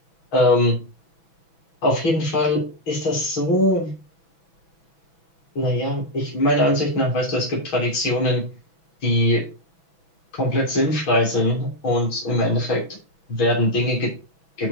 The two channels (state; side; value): late; right; 6.1 ms